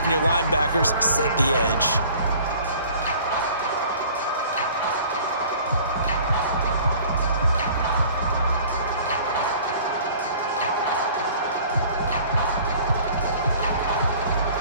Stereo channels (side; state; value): both; inverted; correlation -0.49